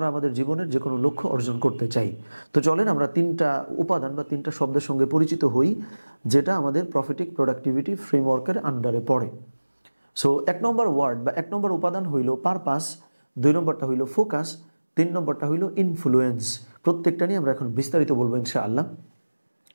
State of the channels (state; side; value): inverted; both; correlation -1.00